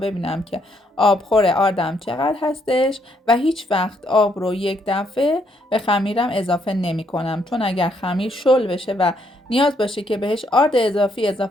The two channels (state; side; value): normal; both; correlation 0.73